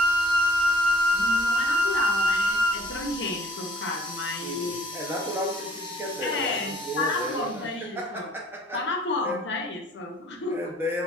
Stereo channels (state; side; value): normal; both; correlation 0.58